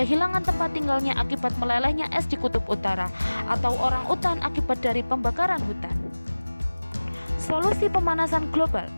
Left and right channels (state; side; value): inverted; both; correlation -1.00